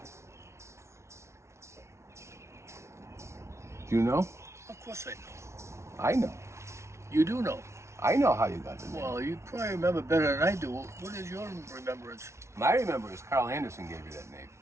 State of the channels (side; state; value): left; late; 0.13 ms